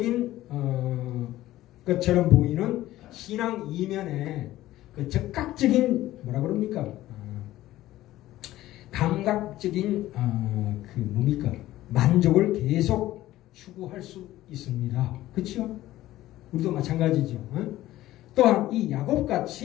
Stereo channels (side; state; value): right; quieter; 15.2 dB